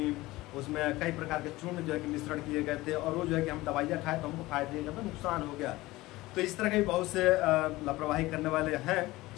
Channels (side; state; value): right; quieter; 19.1 dB